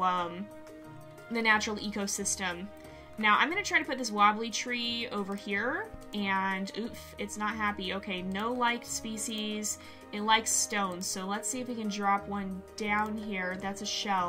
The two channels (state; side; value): identical; both; correlation 1.00